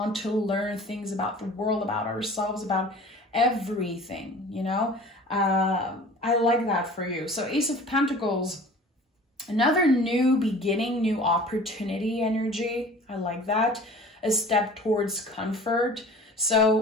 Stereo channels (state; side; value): normal; both; correlation 0.44